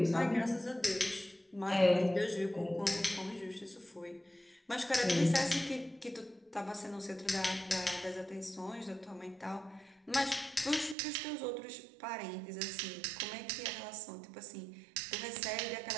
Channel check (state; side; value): drops out; left; at 11.0 s